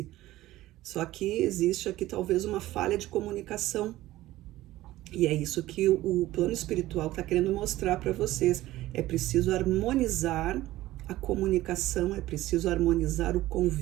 Só que existe aqui talvez uma falha de comunicação. E é isso que o plano espiritual está querendo mostrar para vocês. É preciso harmonizar a comunicação, é preciso harmonizar o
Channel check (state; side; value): quieter; left; 16.1 dB